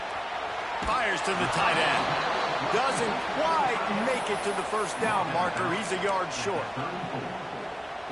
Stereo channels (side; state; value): both; identical; correlation 1.00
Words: Fires to the tight end. Doesn't quite make it to the first down marker. He's a yard short.